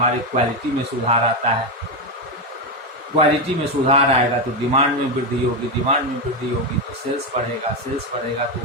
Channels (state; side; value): normal; both; correlation 0.09